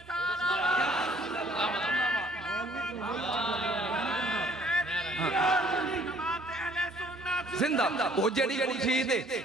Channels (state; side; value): normal; both; correlation 0.58